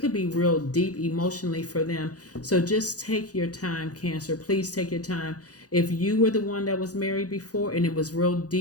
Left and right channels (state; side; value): late; right; 0.67 ms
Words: be real deep emotionally for them. So just take your time, Cancer. Please take your time. If you were the one that was married before and it was real